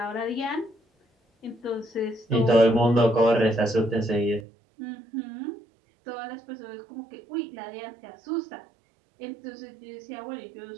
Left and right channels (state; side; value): drops out; left; at 4.5 s